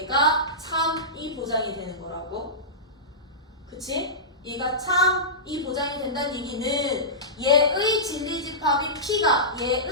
참이 보장이 되는 거라고. 그치? 얘가 참이 보장이 된다는 얘기는 얘의 진리집합인 P가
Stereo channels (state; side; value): normal; both; correlation -0.18